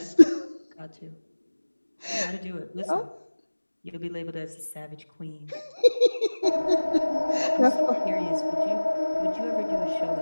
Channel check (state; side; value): inverted; both; correlation -1.00